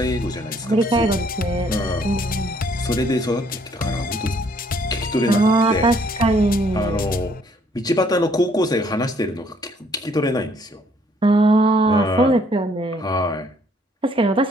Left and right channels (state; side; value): normal; both; correlation 0.64